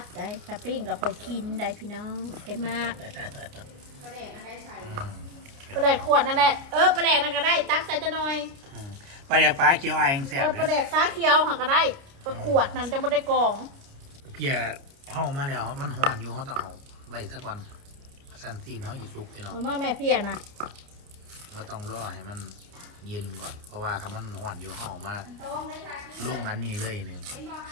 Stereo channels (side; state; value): left; late; 29 ms